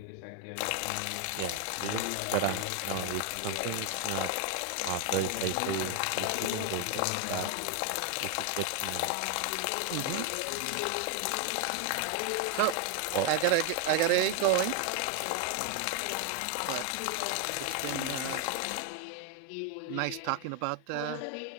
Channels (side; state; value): both; different; correlation 0.01